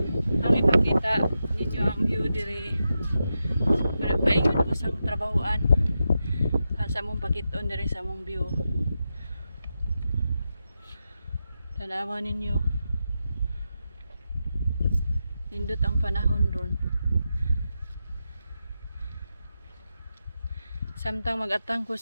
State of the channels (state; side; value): inverted; both; correlation -0.88